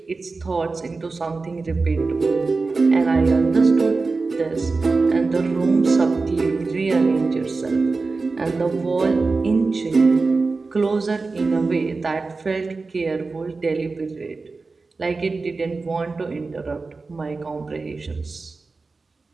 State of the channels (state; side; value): quieter; left; 3.9 dB